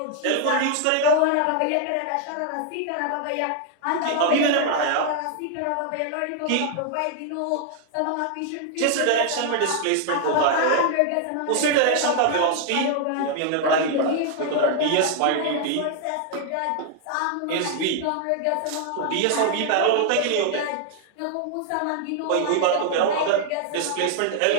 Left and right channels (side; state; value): both; different; correlation 0.00